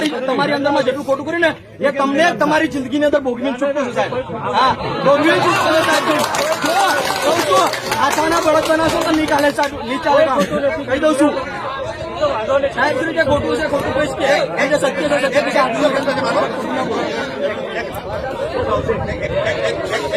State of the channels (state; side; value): identical; both; correlation 1.00